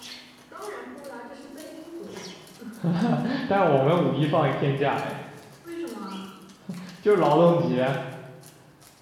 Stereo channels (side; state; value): both; identical; correlation 1.00